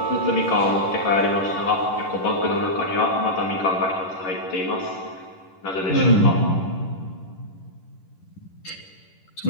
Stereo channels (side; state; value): right; late; 10 ms